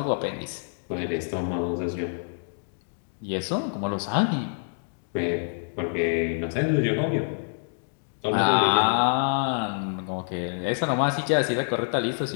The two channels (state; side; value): silent; right; 60 dB below the other